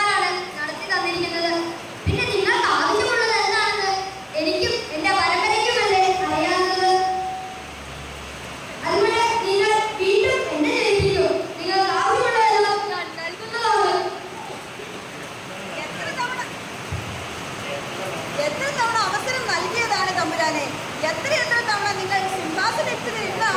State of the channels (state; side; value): identical; both; correlation 1.00